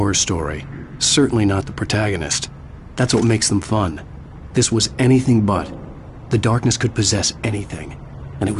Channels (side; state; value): both; identical; correlation 1.00